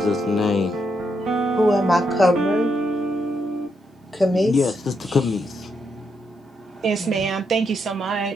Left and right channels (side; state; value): both; normal; correlation 0.80